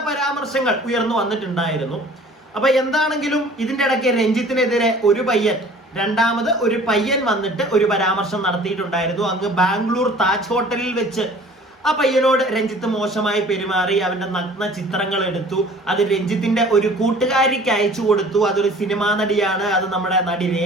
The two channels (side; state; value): both; normal; correlation 0.49